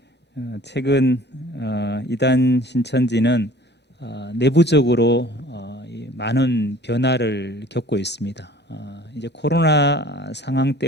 최근 이단 신천지는 내부적으로 많은 변화를 겪고 있습니다. 이제 코로나 상황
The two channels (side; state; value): both; normal; correlation 0.50